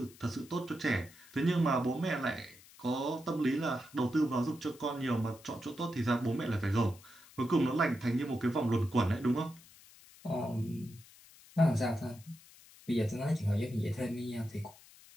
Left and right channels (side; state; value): left; noise; hiss, 23 dB below the sound